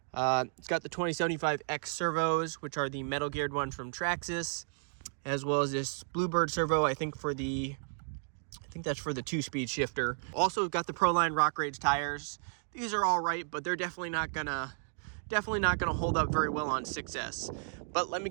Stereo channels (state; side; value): silent; left; digital silence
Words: It's got the 2075X servos, which are the metal geared ones from Traxxas, as well as this Bluebird servo, I think that's for the 2-speed shifter. Also got the Proline Rock Rage tires. These are all right, but they're definitely not gonna hold up very well on 6S. But let me